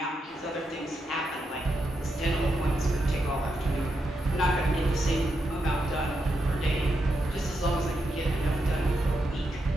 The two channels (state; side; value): normal; both; correlation 0.84